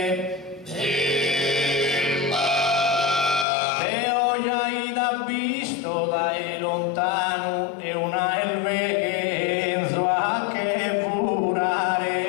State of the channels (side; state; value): right; drops out; at 3.5 s